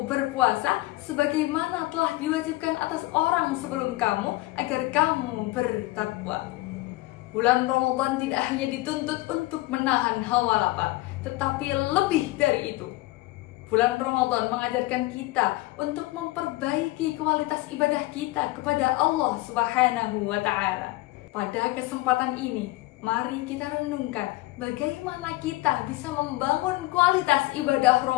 berpuasa sebagaimana telah diwajibkan atas orang sebelum kamu agar kamu bertakwa. Bulan Ramadan tidak hanya dituntut untuk menahan hawa lapar, tetapi lebih dari itu. Bulan Ramadan mengajarkan kita untuk memperbaiki kualitas ibadah kita kepada Allah Subhanahu wa Ta'ala. Pada kesempatan ini, mari kita renungkan bagaimana kita bisa membangun kualitas ibadah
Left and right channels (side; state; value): right; quieter; 19.5 dB